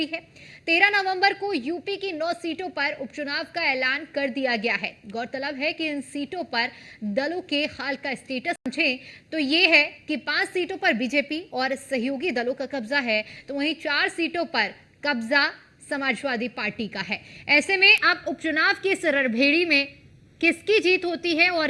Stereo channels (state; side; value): identical; both; correlation 1.00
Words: है। 13 नवंबर को यूपी की 9 सीटों पर उपचुनाव का ऐलान कर दिया गया है। गौरतलब है कि इन सीटों पर दलों के हाल का स्टेटस समझें तो ये है कि 5 सीटों पर बीजेपी और सहयोगी दलों का कब्जा है, तो वहीं 4 सीटों पर कब्जा समाजवादी पार्टी का है। ऐसे में अब उपचुनाव की इस रणभेरी में किसकी जीत होती है